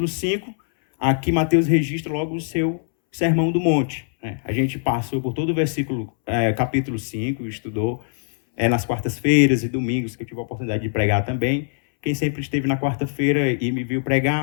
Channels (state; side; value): silent; right; 64 dB below the other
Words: 5. Aqui, Mateus registra logo o seu Sermão do Monte. A gente passou por todo o capítulo 5, estudou nas quartas-feiras e domingos, que eu tive a oportunidade de pregar também. Quem sempre esteve na quarta-feira e me viu